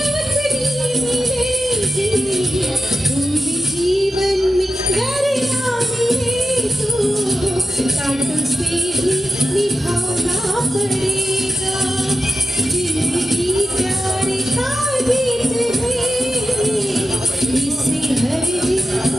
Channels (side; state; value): both; normal; correlation 0.90